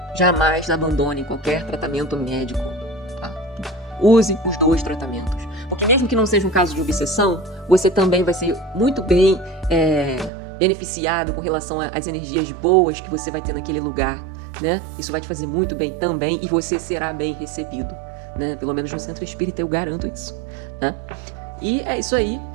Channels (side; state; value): left; drops out; at 10.3 s